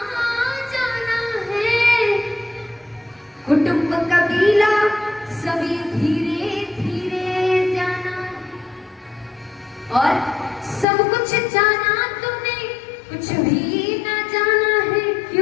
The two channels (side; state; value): right; drops out; at 10.9 s